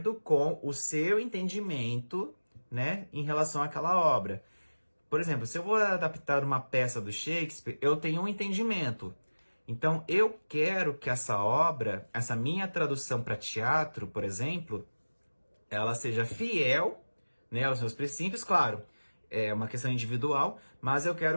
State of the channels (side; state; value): both; inverted; correlation -1.00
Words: com o seu entendimento, né, em relação àquela obra. Por exemplo, se eu vou adaptar uma peça do Shakespeare, eu tenho um entendimento. Então, eu quero que essa obra, essa minha tradução para teatro, por exemplo, ela seja fiel, né, aos meus princípios, claro, é uma questão individual, mas eu